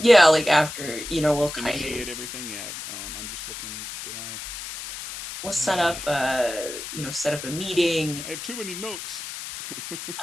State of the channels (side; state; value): left; noise; hiss, 9 dB below the sound